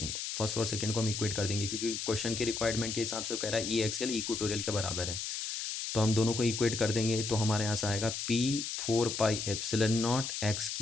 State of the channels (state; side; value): noise; left; hiss, 4 dB below the sound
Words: first और सेकंड को हम इक्वेट कर देंगे क्योंकि क्वेश्चन के रिक्वायरमेंट के हिसाब से कह रहा है ई एक्सियल इक्वेटोरियल के बराबर है। तो हम दोनों को इक्वेट कर देंगे तो हमारे यहाँ से आएगा p/4πε0